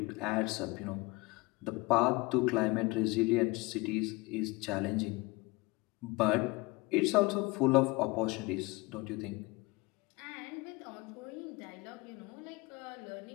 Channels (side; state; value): right; quieter; 23.3 dB